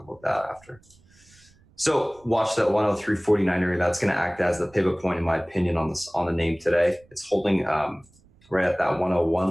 that after. So watch that 103.49 area. That's going to act as the pivot point, in my opinion, on the name today. It's holding right at that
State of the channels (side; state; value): right; noise; rumble, 30 dB below the sound